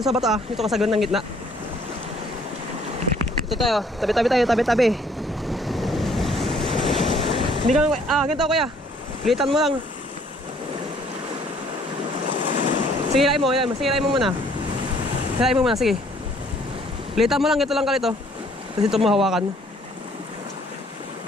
sa bato ah. Dito ka sa gandang gitna. Ito tayo. Tabi-tabi tayo. Tabi-tabi. Hindi ka lang. Ganito kuya. Litan mo lang. Sige, hilain mo. Sige, hilain mo muna. Hilain mo muna. Sige. Litan mo lang. Ito lang kalito. Tapos ito mo hawakan.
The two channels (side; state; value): both; normal; correlation 0.61